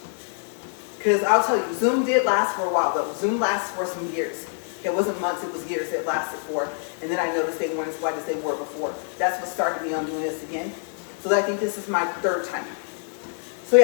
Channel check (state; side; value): silent; right; 62 dB below the other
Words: because I'll tell you, Zoom did last for a while though. Zoom lasts for some years. It wasn't months, it was years it lasted for. And then I noticed they weren't as white as they were before. That's what started me on doing this again. So I think this is my third time. So